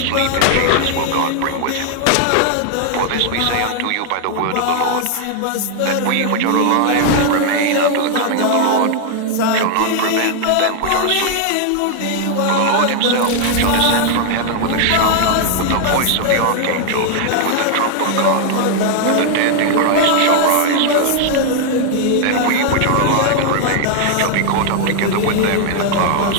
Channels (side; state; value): both; different; correlation 0.00